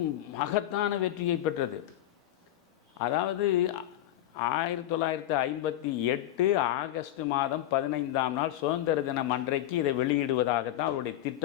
மகத்தான வெற்றியை பெற்றது. அதாவது 1958 ஆகஸ்ட் மாதம் 15ஆம் நாள் சுதந்திர தினம் அன்றைக்கு இதை வெளியிடுவதாகத்தான் அவருடைய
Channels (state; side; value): quieter; right; 13.1 dB